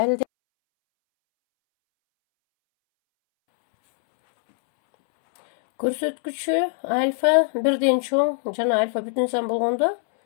Көрсөткүчү альфа бирден чоң жана альфа бүтүн сан болгондо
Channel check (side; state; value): right; silent; 64 dB below the other